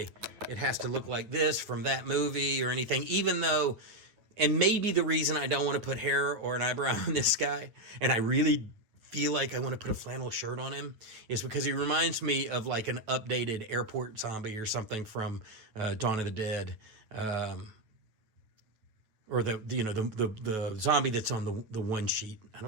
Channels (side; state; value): left; late; 9.2 ms